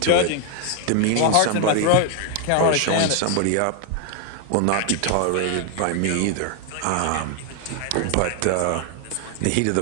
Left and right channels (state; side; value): different; both; correlation 0.00